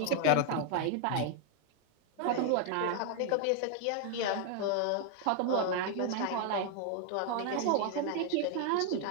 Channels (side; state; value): both; different; correlation 0.01